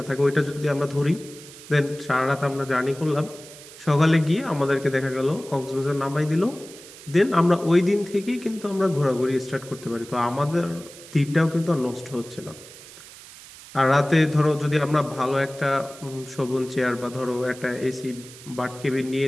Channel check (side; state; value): right; noise; hiss, 18 dB below the sound